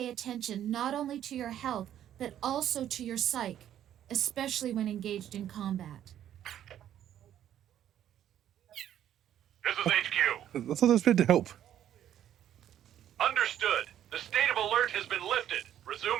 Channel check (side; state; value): left; quieter; 11.0 dB